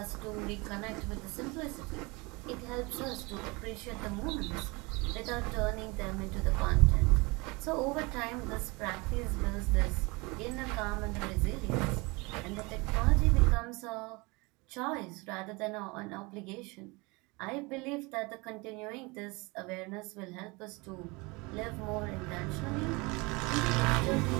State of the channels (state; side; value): quieter; left; 26.2 dB